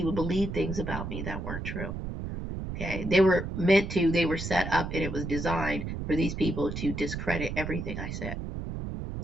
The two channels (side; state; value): right; noise; rumble, 5 dB below the sound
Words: believed things about me that weren't true. Okay, they were set up, and it was designed for these people to discredit everything I said,